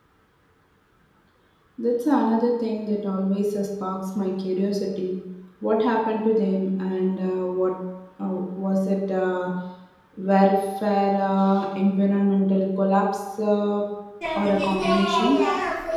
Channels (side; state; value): both; identical; correlation 1.00